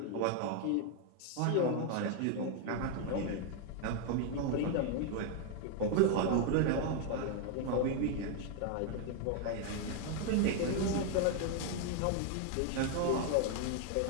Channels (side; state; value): both; different; correlation 0.00